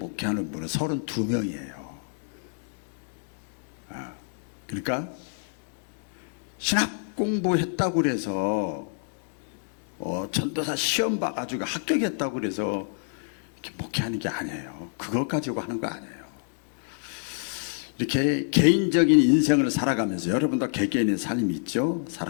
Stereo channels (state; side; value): silent; right; digital silence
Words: 분은 32명이에요. 그러니까 신학 공부했다고 그래서 전도사 시험 봐가지고 합격했다고 그래서 이렇게 목회하는 게 아니에요. 그것 가지고 하는 거 아니에요. 이렇게 개인적인 인생을 살아가면서 여러분도 개개인의 삶이 있죠.